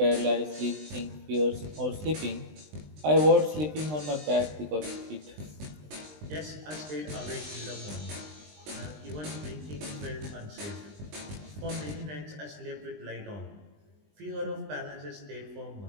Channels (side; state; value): left; late; 20 ms